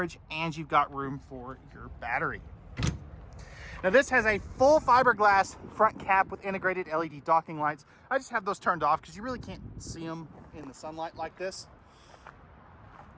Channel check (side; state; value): both; identical; correlation 1.00